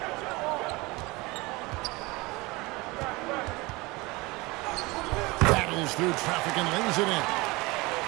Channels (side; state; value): left; quieter; 23.4 dB